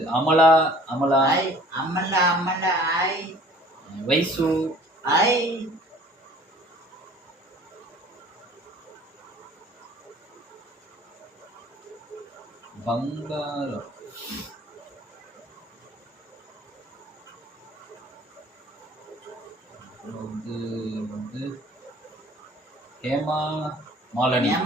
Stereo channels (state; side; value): normal; both; correlation 0.50